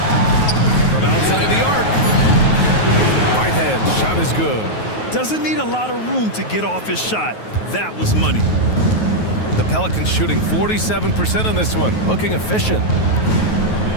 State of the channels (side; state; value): right; late; 9.3 ms